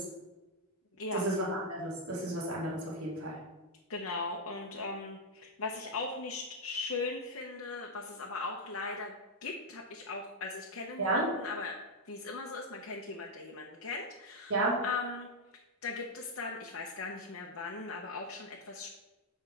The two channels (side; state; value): both; normal; correlation -0.01